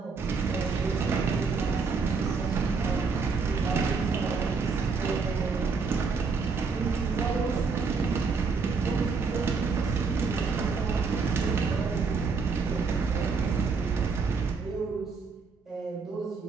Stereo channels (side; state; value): left; quieter; 4.8 dB